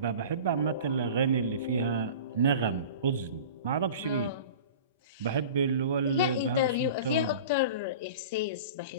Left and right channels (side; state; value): both; inverted; correlation -0.38